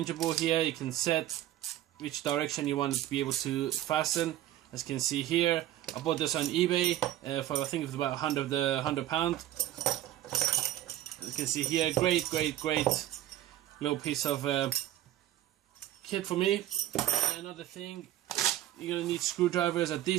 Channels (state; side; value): quieter; left; 13.4 dB